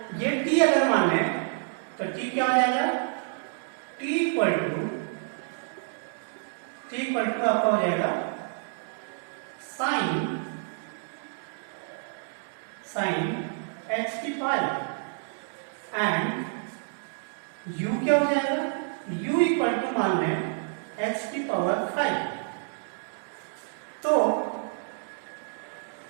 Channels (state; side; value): silent; left; 59 dB below the other